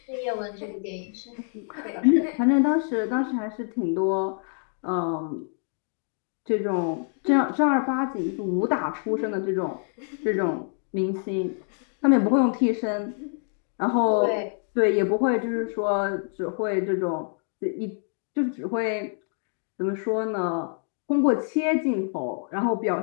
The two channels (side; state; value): right; silent; 61 dB below the other